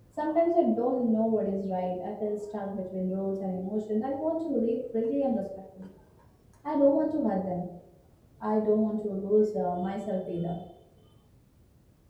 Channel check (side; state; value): both; identical; correlation 1.00